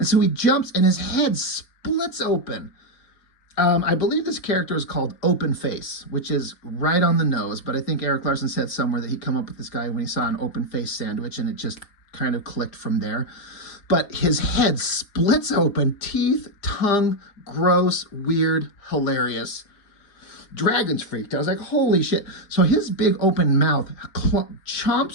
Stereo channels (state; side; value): late; right; 4.9 ms